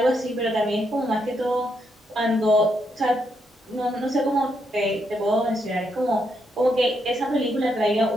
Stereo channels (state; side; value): normal; both; correlation 0.78